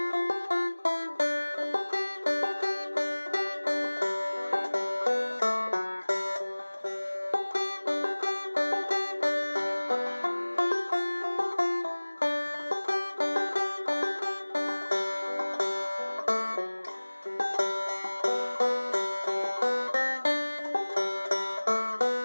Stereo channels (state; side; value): inverted; both; correlation -1.00